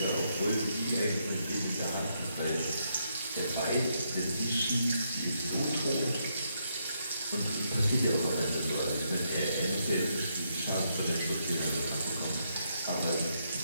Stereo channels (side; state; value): both; inverted; correlation -0.77